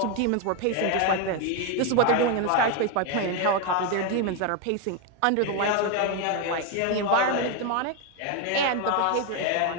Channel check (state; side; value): different; both; correlation 0.01